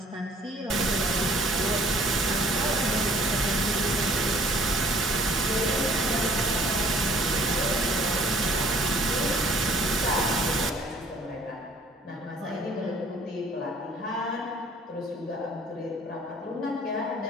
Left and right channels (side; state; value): both; normal; correlation 0.56